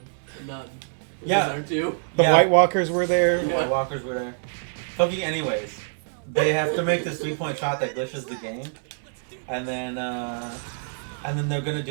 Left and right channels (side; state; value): left; silent; digital silence